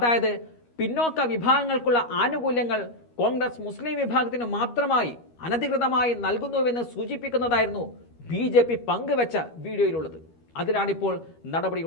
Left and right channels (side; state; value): right; late; 13 ms